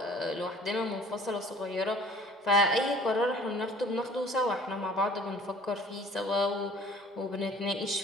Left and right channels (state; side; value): normal; both; correlation 0.50